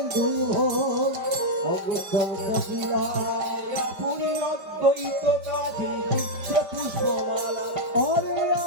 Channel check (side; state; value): left; late; 5.1 ms